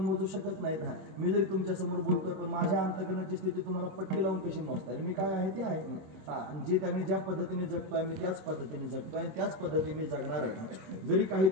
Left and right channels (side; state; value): left; late; 26 ms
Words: मोजू शकत नाहीत. मी जरी तुमच्या समोर बोलतोय पण माझ्या अंतकरणाची स्थिती तुम्हाला पट्टी लावून कशी मोजता येईल. मी काय आहे ते आहे. आणि जे त्यांनी ज्या पद्धतीने जगतोय मी त्याच पद्धतीने जगतोय आणि त्याच पद्धतीने मी जगणार आहे. जरी काही